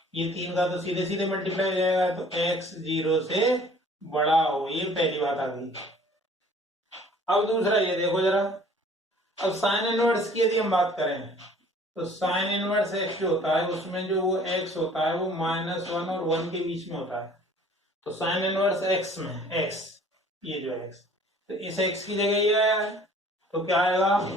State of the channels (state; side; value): normal; both; correlation 0.52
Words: ये 3 का तो सीधे सीधे मल्टीप्लाई हो जाएगा, तो x 0 से बड़ा हो, ये पहली बात आ गई। अब दूसरा ये देखो जरा, अब साइन इनवर्स की यदि हम बात करें तो साइन इनवर्स x जो होता है उसमें जो वो x होता है वो -1 और 1 के बीच में होता है। तो साइन इनवर्स x में x, ये जो x, तो इस x की जगह ये आया है, तो क्या आएगा,